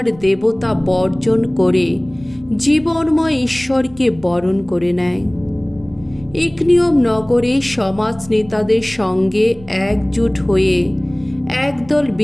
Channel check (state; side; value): noise; right; rumble, 22 dB below the sound